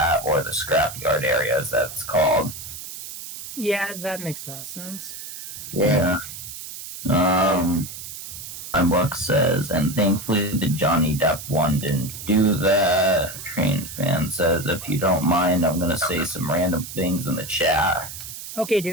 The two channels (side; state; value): right; noise; hiss, 11 dB below the sound